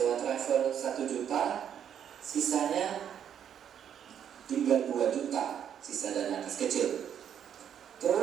travel 1 juta, sisanya tinggal 2 juta. Sisa dana kas kecil.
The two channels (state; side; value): quieter; left; 9.0 dB